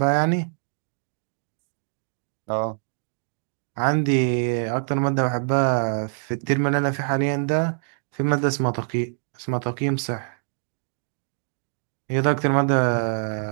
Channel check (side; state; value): left; silent; digital silence